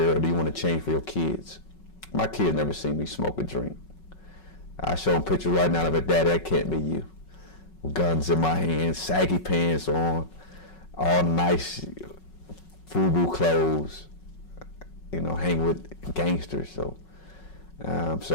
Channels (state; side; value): late; right; 5.4 ms